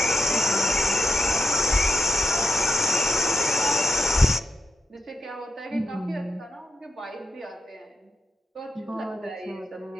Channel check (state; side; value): normal; both; correlation 0.87